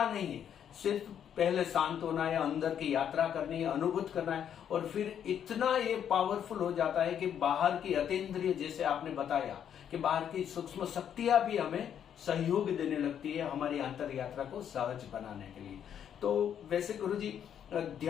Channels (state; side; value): quieter; right; 9.0 dB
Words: नहीं है, सिर्फ पहले शांत होना है, अंदर की यात्रा करनी है, अनुभूत करना है, और फिर इतना ये पावरफुल हो जाता है कि बाहर की अतीन्द्रिय, जैसे आपने बताया कि बाहर की सूक्ष्म शक्तियां भी हमें सहयोग देने लगती है हमारी अंतर यात्रा को सहज बनाने के लिए। तो वैसे गुरुजी,